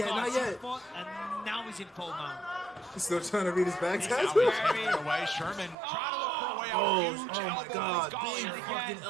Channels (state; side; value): drops out; left; at 5.8 s